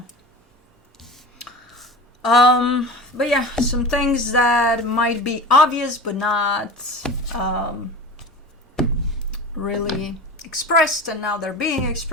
But yeah, some things that might be obvious but not really expressed, and now they're being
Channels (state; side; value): normal; both; correlation 0.33